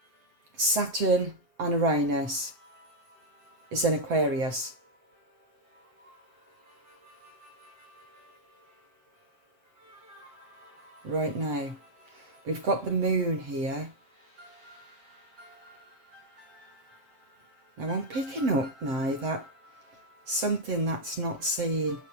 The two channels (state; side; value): late; left; 7.5 ms